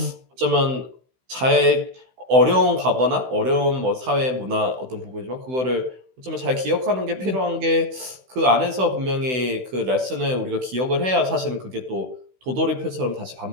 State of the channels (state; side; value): late; left; 16 ms